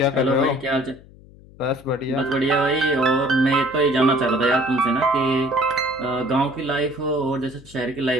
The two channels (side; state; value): left; noise; hum, 23 dB below the sound